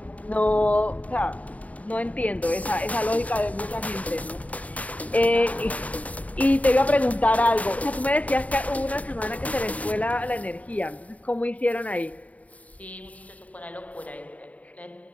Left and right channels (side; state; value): right; late; 0.070 ms